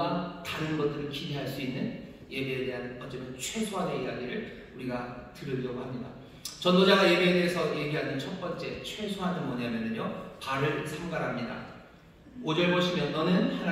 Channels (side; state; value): both; identical; correlation 1.00